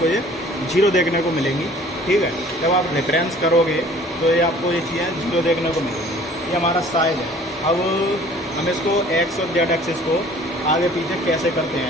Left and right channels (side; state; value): both; normal; correlation 0.51